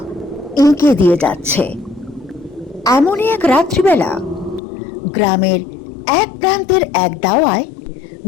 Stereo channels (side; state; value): right; drops out; at 4.6 s